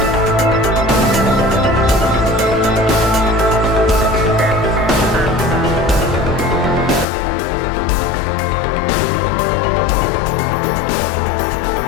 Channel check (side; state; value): right; drops out; at 7.1 s